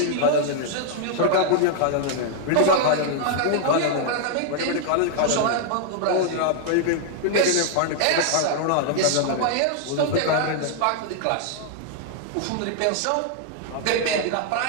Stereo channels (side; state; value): both; different; correlation 0.00